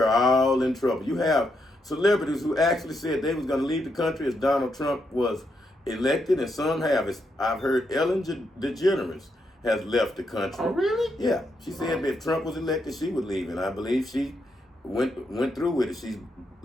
all in trouble. You have celebrities who actually said they was going to leave the country as Donald Trump was elected, and some have. I've heard Ellen DeGeneres has left the country. Oh, really? Yeah. She said if Trump was elected, she would leave, and I believe she went through with it. She's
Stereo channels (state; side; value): normal; both; correlation 0.80